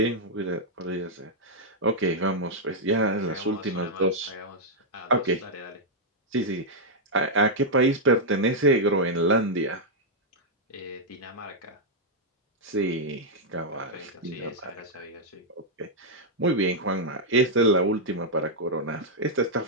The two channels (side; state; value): both; normal; correlation -0.05